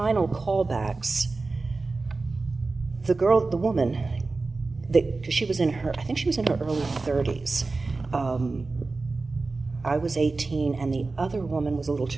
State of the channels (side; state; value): left; quieter; 3.7 dB